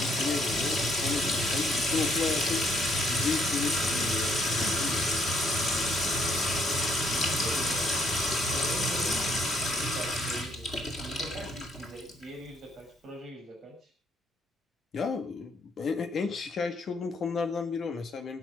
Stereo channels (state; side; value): normal; both; correlation 0.69